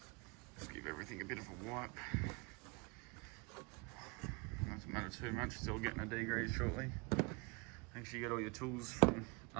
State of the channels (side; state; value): left; quieter; 29.9 dB